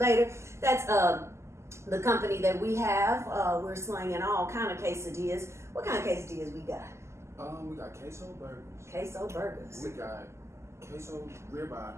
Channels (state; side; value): late; left; 0.13 ms